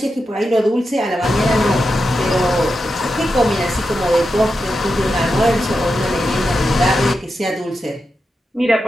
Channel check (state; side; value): normal; both; correlation 0.88